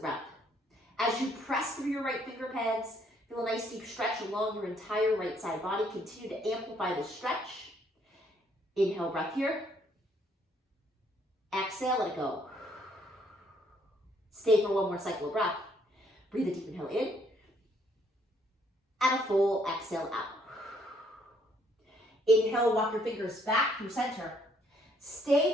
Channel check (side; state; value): both; normal; correlation 0.67